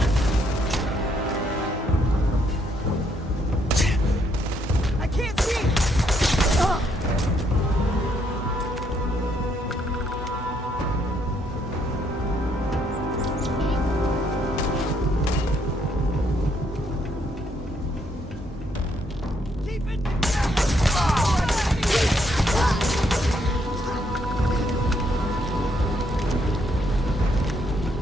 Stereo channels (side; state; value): both; normal; correlation 0.72